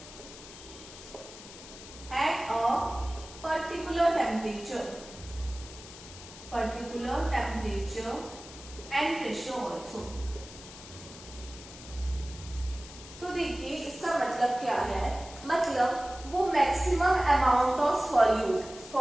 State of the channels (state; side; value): noise; left; hiss, 16 dB below the sound